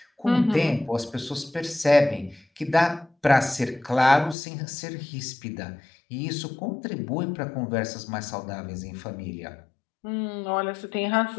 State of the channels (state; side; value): drops out; right; at 4.4 s